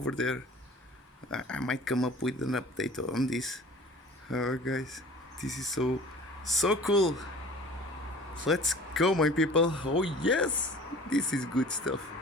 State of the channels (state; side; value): normal; both; correlation 0.44